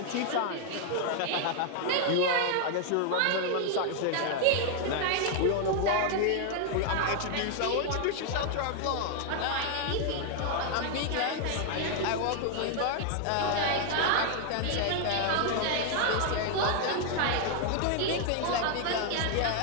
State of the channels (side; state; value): both; different; correlation 0.00